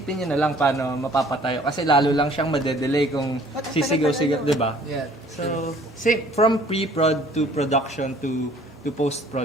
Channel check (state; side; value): normal; both; correlation 0.55